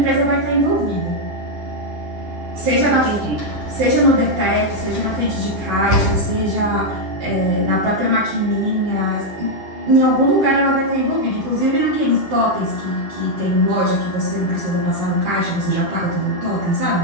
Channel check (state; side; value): late; left; 10 ms